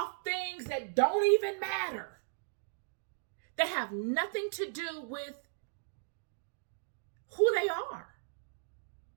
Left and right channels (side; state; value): left; silent; digital silence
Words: things that don't even matter, that have nothing to do with who they are.